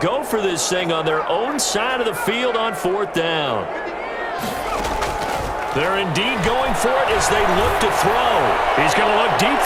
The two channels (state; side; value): identical; both; correlation 1.00